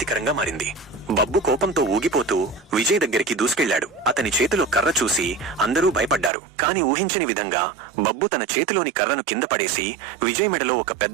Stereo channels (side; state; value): left; drops out; at 6.3 s